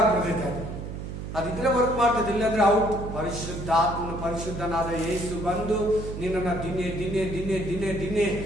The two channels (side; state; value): right; noise; hum, 8 dB below the sound